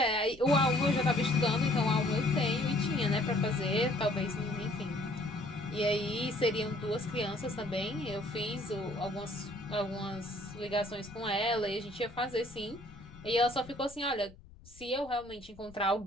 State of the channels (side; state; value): left; noise; rumble, 21 dB below the sound